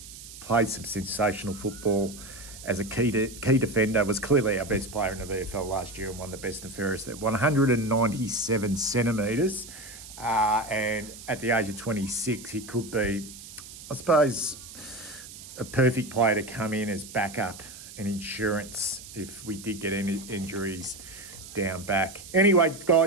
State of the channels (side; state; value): right; noise; hiss, 15 dB below the sound